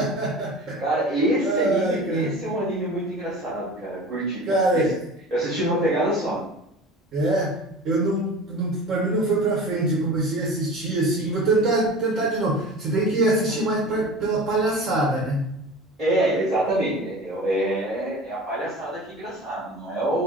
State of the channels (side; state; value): both; normal; correlation 0.36